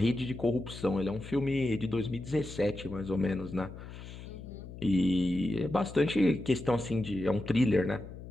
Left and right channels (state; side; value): noise; left; hum, 13 dB below the sound